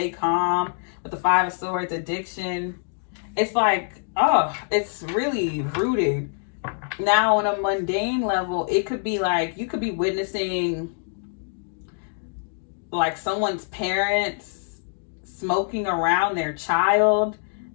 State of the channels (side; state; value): right; silent; digital silence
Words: calm. With the Five of Swords, addiction. It's like, oh, it's really rooted. Now on a mundane level, it could be like, you could be witnessing like someone's parents smoking around their child,